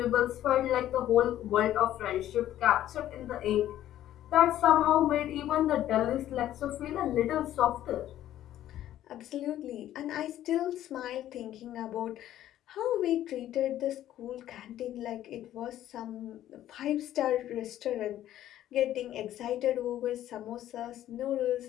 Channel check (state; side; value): quieter; right; 12.6 dB